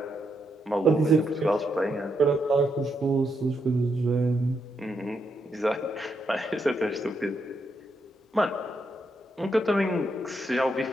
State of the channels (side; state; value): both; normal; correlation 0.80